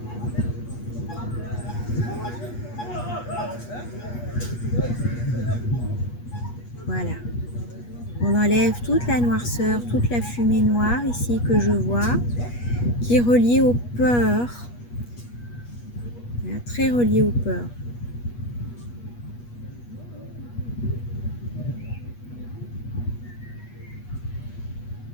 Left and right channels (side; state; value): right; late; 8.3 ms